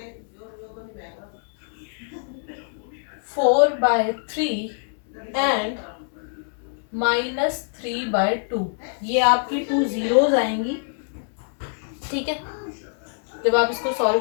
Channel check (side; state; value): right; silent; digital silence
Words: 4/3 एंड -3/2, ये आपकी 2 जीरोस आएंगी, ठीक है, जब आप इसको सॉल्व